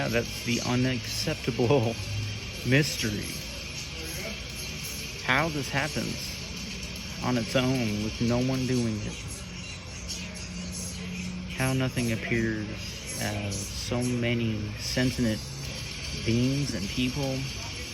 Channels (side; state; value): both; identical; correlation 1.00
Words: that's the unacceptable mystery. How this happens on its own with no one doing it. How nothing appears as so many sentient beings and people.